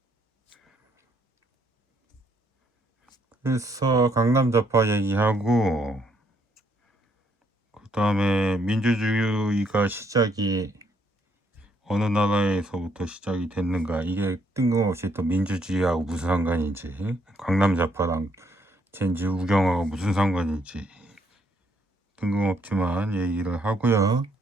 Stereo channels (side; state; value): both; normal; correlation 0.70